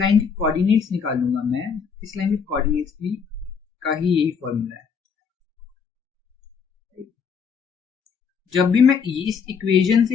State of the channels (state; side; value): quieter; right; 6.2 dB